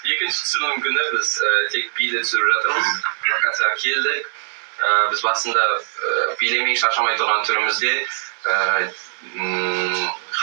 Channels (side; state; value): left; silent; 65 dB below the other